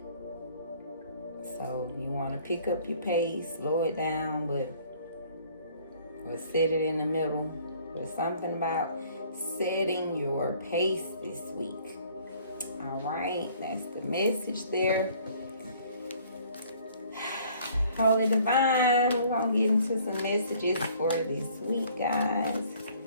So you want to pick up your pace, slow it down, or set it in the middle. There's something about setting your pace this week. All right, that's the message there. Holy Divine, we're going to get into some messages for this week, guys.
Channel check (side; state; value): both; inverted; correlation -0.57